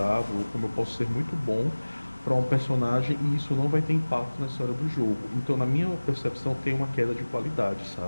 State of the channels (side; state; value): both; inverted; correlation -1.00